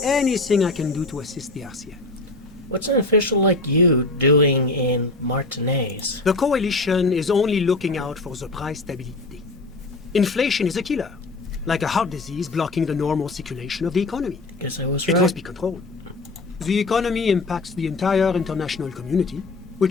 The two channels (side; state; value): right; quieter; 3.2 dB